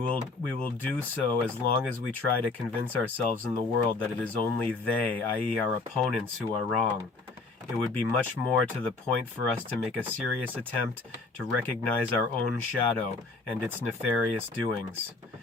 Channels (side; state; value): right; quieter; 3.7 dB